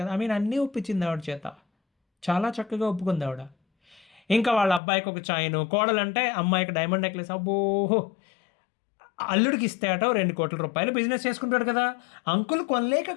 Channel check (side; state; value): right; drops out; at 4.8 s